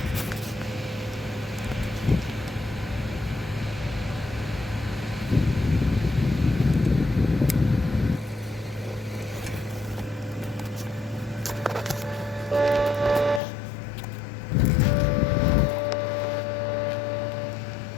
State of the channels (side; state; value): right; drops out; at 13.4 s